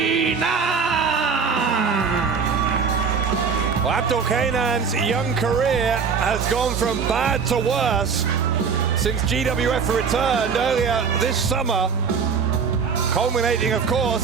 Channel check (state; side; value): quieter; left; 5.8 dB